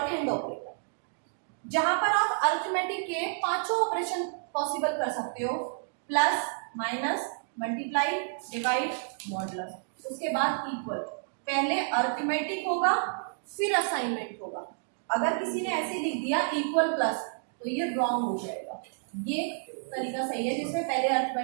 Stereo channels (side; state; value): left; silent; digital silence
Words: हैंड ऑपरेटर, जहां पर आप अरिथमेटिक के 5 ऑपरेशन पॉसिबल कर सकते हो, plus, minus, multiply, divide, modulus, उसके बाद इक्वल। पहले अरिथमेटिक होगा फिर असाइनमेंट होगा। अगर किसी ने ऐसे लिख दिया इक्वल प्लस, तो ये रॉन्ग हो जाएगा। ये तरीका सही है जिसमें पहले